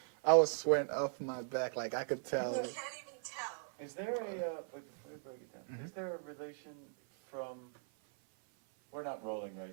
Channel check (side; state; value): left; silent; 52 dB below the other